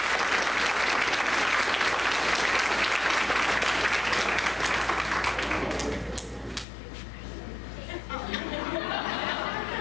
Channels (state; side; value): drops out; right; at 6.7 s